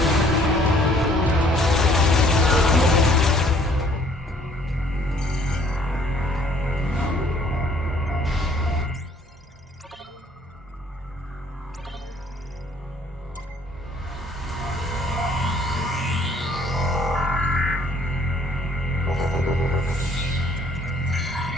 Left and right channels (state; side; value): normal; both; correlation 0.60